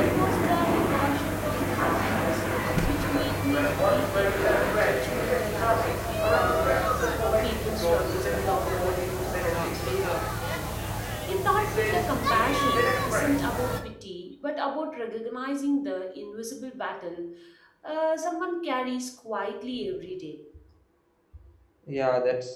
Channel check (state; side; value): identical; both; correlation 1.00